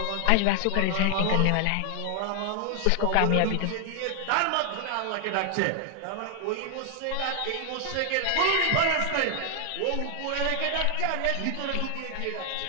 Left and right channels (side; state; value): both; different; correlation 0.00